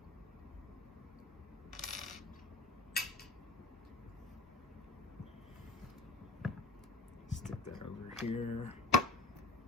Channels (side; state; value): right; quieter; 3.1 dB